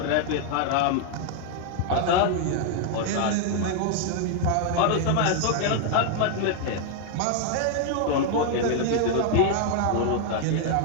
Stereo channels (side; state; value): both; different; correlation 0.00